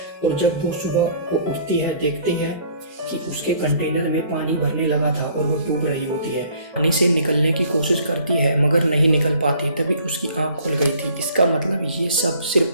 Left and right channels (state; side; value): inverted; both; correlation -0.56